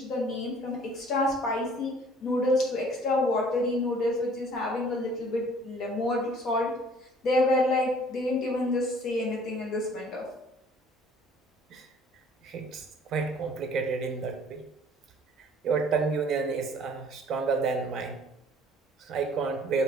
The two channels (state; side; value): normal; both; correlation 0.54